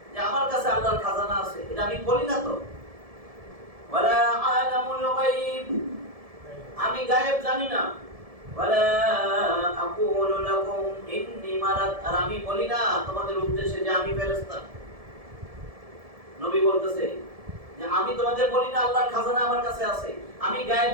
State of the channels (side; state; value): left; late; 1.7 ms